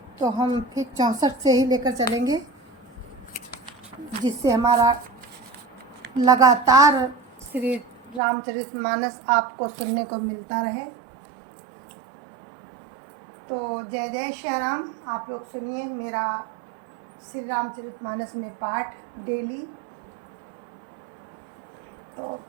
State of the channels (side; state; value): left; drops out; at 8.2 s